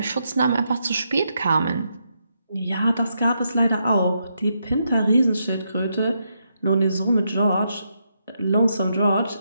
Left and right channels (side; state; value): both; inverted; correlation -0.81